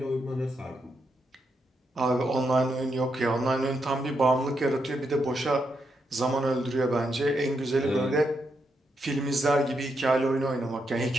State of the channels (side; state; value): both; normal; correlation 0.81